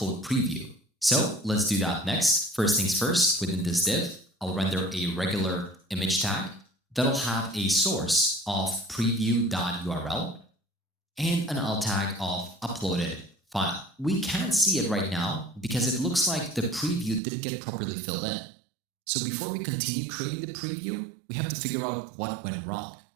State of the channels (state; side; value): drops out; left; at 17.2 s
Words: preview. So let's do that next. First things first, within this div, I'll render a regular image tag that'll have a source of preview.url and an alt tag of uploaded file. We can't see it right now because it looks like the preview didn't get properly filled in. So before we continue creating the preview, we have to figure out what went wrong.